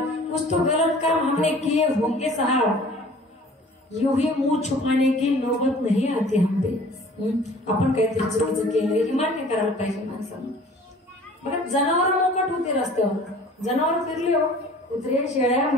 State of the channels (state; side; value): normal; both; correlation 0.48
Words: कुछ तो गलत काम हमने किए होंगे साहब यूं ही मुंह छुपाने की नौबत नहीं आती हम पे. आपण काहीतरी चुकीचं केलं हे मान्य करायला पाहिजे माणसानं. बघा जनावर मोकट होते रस्त्यावर जनावर फिरले हो कुत्रे शेळ्या